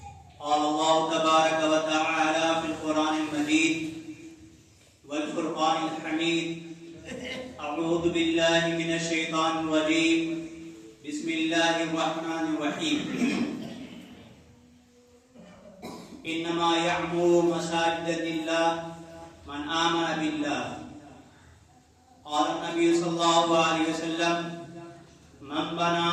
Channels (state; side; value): identical; both; correlation 1.00